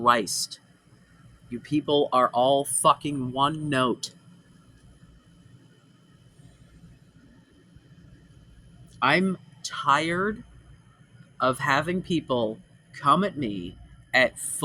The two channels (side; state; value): both; identical; correlation 1.00